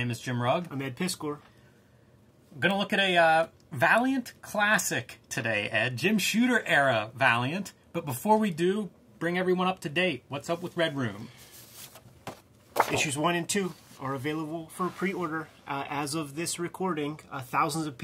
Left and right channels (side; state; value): both; identical; correlation 1.00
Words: is Jim Rugg. I'm Ed Piskor. I'm going to look at a Valiant classic today, Ed. Jim Shooter era Valiant. But before we do, bring everyone up to date. What's up with Red Room? Issues 1 and 2 are available for pre-order. As of this recording, thousands of